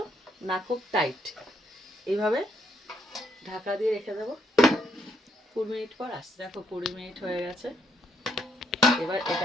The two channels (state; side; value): normal; both; correlation 0.73